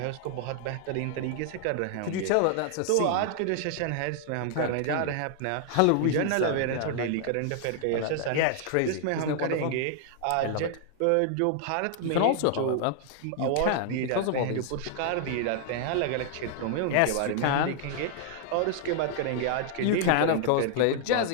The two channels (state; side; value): different; both; correlation -0.01